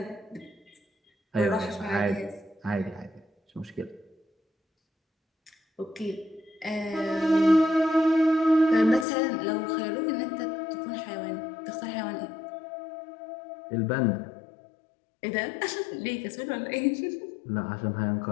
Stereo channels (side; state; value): right; drops out; at 9.1 s